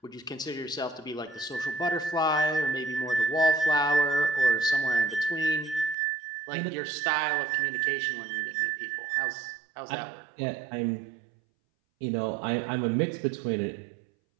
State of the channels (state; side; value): drops out; left; at 6.0 s